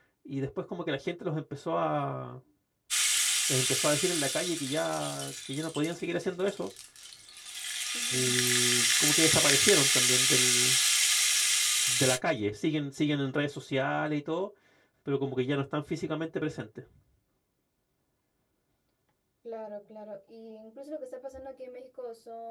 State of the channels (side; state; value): both; identical; correlation 1.00